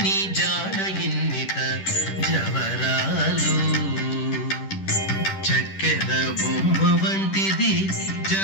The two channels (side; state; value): right; late; 10 ms